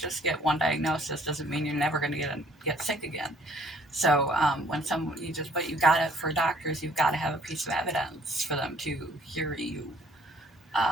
get one diagnosis doesn't mean you're never going to get sick again. So when but you got it for doctors, you've got to have a piece of evidence for them to hear you.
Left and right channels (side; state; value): both; normal; correlation 0.59